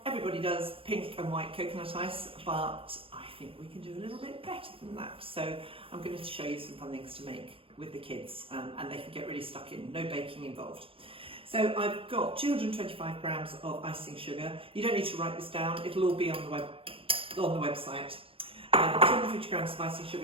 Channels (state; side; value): late; left; 0.27 ms